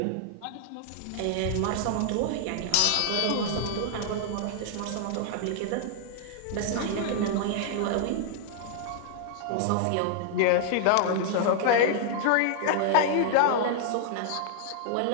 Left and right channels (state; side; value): different; both; correlation -0.01